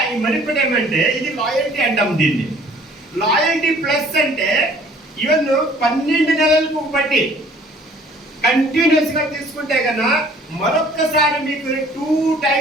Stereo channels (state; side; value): normal; both; correlation 0.55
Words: ఈ మరిపడి ఏమంటే ఇది లాయల్టీ అంటాం దీన్ని లాయల్టీ ప్లస్ అంటే ఈవెన్ 12 నెలలకు బట్టి కంటిన్యూస్ గా తీసుకుంటే కన్నా మరొక్కసారి మీకు 2